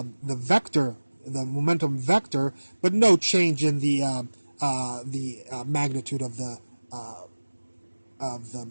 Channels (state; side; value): inverted; both; correlation -1.00